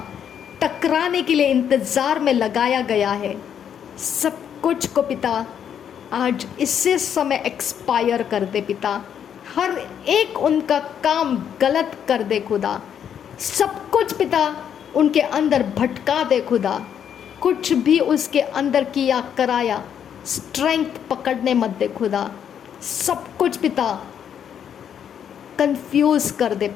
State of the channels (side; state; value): right; quieter; 8.6 dB